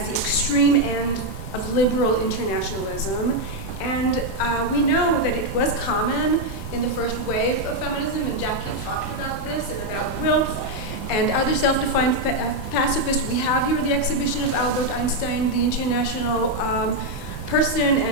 the extreme end of liberal internationalism, and we know that it was common in the first wave of feminism, and Jackie talked about this and about Wilf and other self-defined pacifists. We have here the exhibition of Albert Einstein, the international person,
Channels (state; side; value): noise; right; rumble, 11 dB below the sound